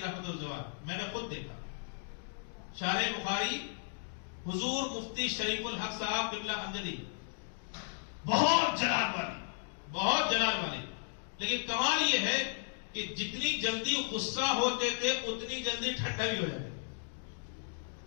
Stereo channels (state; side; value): silent; right; digital silence